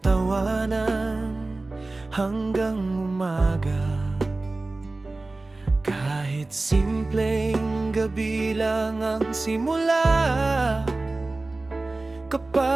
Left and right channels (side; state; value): left; quieter; 3.1 dB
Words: tawanan hanggang umaga. Kahit simpleng gabi lang ang simula,